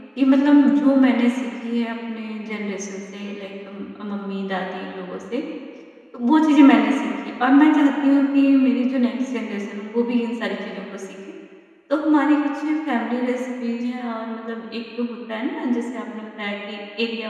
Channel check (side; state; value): both; identical; correlation 1.00